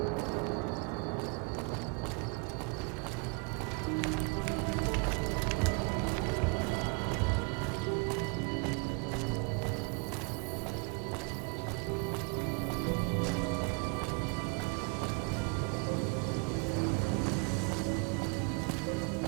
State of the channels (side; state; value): left; quieter; 31.7 dB